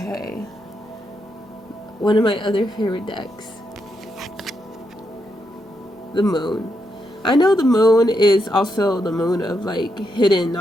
One of my other favorite decks. The moon. I know the moon is also the moon of like hidden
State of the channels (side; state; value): both; normal; correlation 0.82